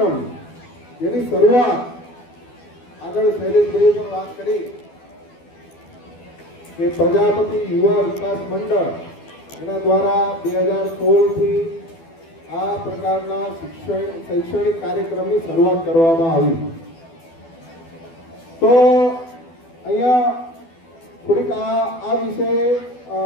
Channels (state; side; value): late; right; 12 ms